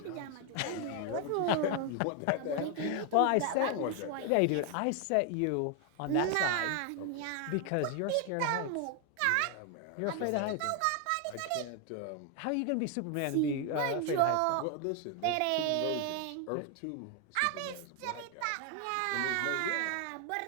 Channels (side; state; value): both; different; correlation 0.01